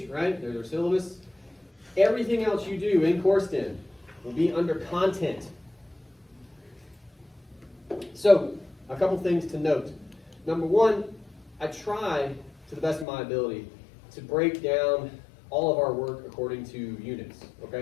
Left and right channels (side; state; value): right; drops out; at 13.1 s